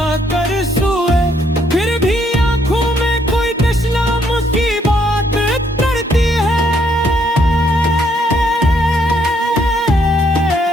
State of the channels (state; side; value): normal; both; correlation 0.70